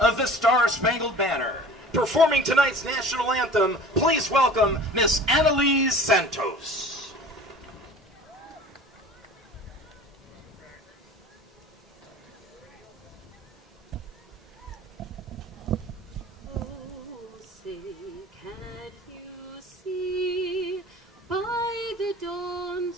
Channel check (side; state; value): both; normal; correlation 0.42